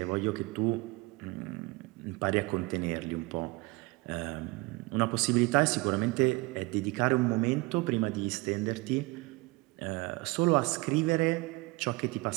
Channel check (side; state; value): left; quieter; 24.6 dB